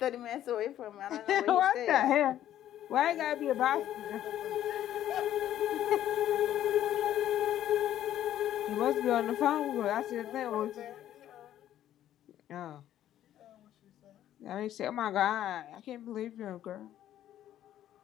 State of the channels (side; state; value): right; quieter; 11.9 dB